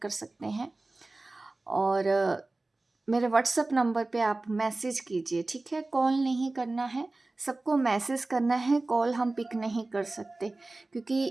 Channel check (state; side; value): quieter; left; 3.1 dB